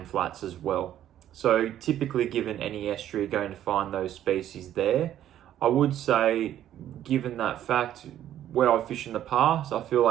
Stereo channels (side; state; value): left; quieter; 11.6 dB